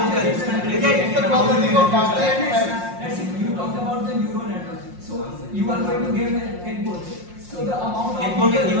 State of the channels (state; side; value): late; left; 5.6 ms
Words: You talked about the neural network. So you are going to give input. So the amount of input is